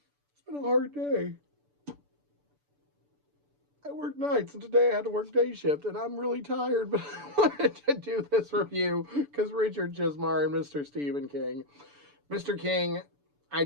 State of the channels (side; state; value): left; late; 6.9 ms